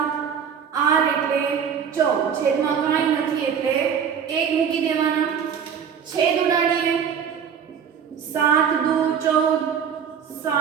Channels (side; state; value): left; quieter; 7.5 dB